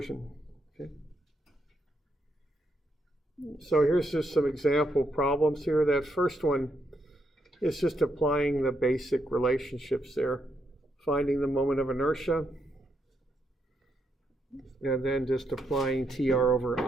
Okay. So here's just some example problems here. That first one is just applying the basic relationships there. Finding the moment of inertia, and then just applying TR over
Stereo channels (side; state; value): both; normal; correlation 0.79